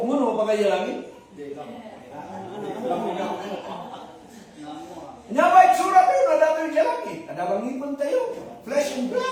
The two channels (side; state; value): both; identical; correlation 1.00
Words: mo no pagkaya langit? Nya ba itsura tayo na dato yung langit? Ada bang ngipon tayo? Flesh and